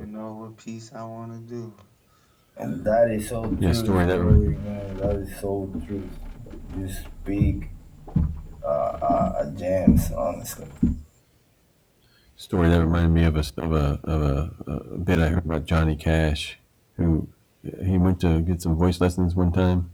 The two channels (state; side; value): identical; both; correlation 1.00